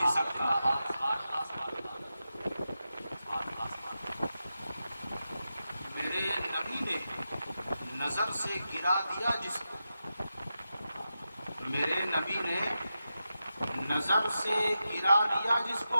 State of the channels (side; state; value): both; inverted; correlation -0.90